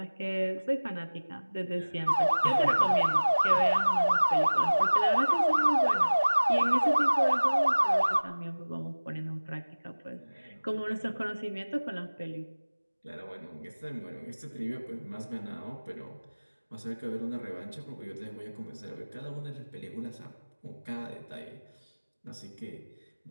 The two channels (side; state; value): both; inverted; correlation -1.00